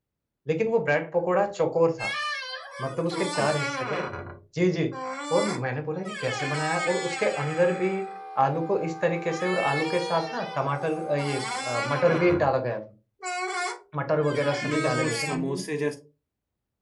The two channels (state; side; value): identical; both; correlation 1.00